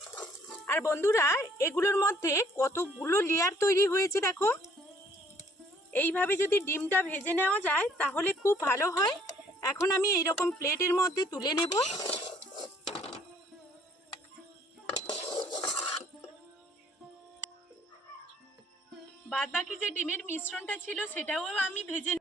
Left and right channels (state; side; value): normal; both; correlation 0.61